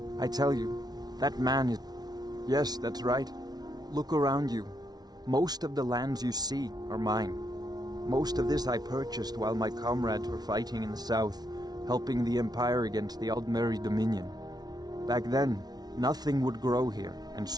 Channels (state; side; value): late; left; 0.19 ms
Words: I tell you, that man is... Yes, that's right. Look around you. Most of the lands you see are mine. Most of this I purchased while my comrades were fighting in the south, helping the Empire against the Aldmeri Dominion. Back then, nothing would grow here, and